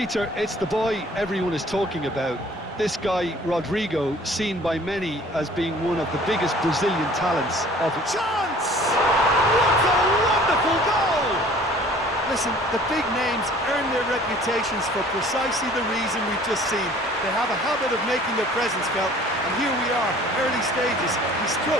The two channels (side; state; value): both; normal; correlation 0.51